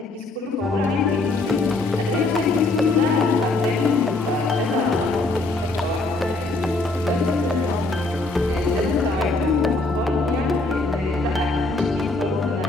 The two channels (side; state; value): right; quieter; 3.2 dB